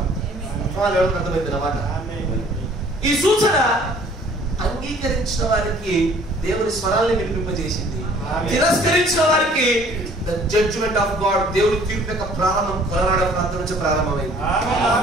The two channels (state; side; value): normal; both; correlation 0.55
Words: అర్థమైంది అన్నమాట. ఈ సూచన అంగీకరించిన వారికి దేవుని స్వరాన్ని వినిపింపజేసింది, తిరస్కరించిన వారికి ద జడ్జ్మెంట్ ఆఫ్ గాడ్, దేవుని తీర్పు యొక్క ప్రారంభం కలరాడ ప్రాంతం నుంచి ప్రారంభమైంది.